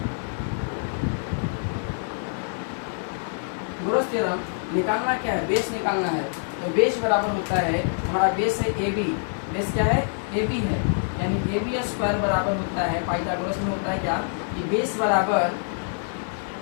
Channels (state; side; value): silent; right; 55 dB below the other